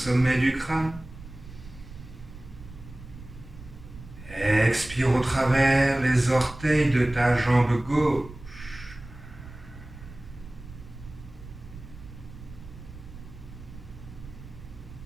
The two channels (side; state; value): right; noise; rumble, 16 dB below the sound